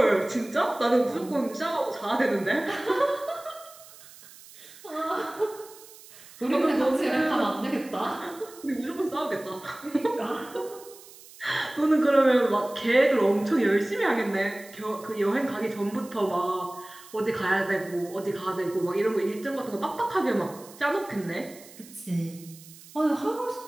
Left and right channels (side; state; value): right; noise; hiss, 20 dB below the sound